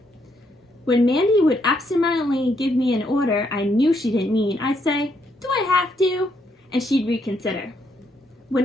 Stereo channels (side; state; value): both; normal; correlation 0.75